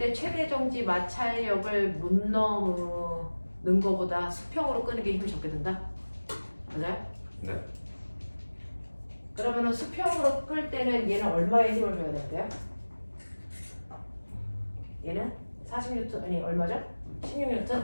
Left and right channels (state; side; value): inverted; both; correlation -1.00